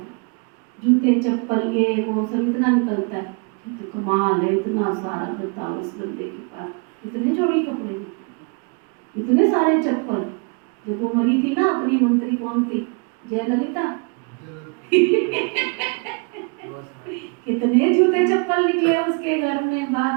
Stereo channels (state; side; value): quieter; left; 34.9 dB